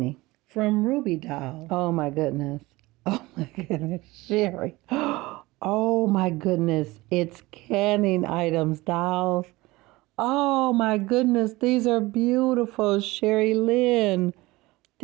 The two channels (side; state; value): left; quieter; 20.5 dB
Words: From Ruby Doll. Oh my goodness. Oh my goodness, Sherry. Oh my goodness, it's canning items, dolls. Oh my goodness, these are beautiful, Sherry Lynn.